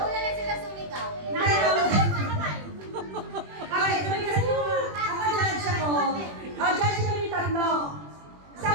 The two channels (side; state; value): left; late; 21 ms